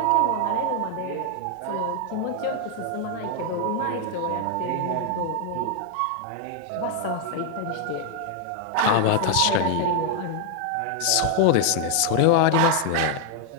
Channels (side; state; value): both; different; correlation 0.00